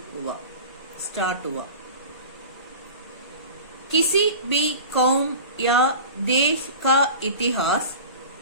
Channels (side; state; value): both; inverted; correlation -0.36